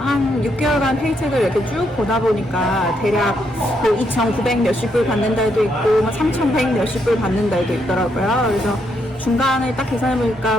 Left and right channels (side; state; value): both; normal; correlation 0.77